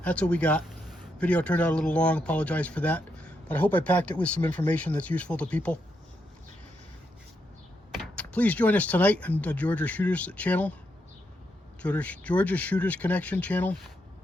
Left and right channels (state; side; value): normal; both; correlation 0.81